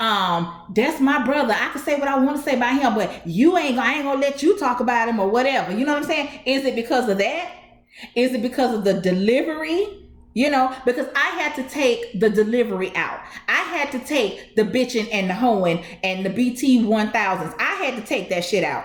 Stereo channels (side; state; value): both; identical; correlation 1.00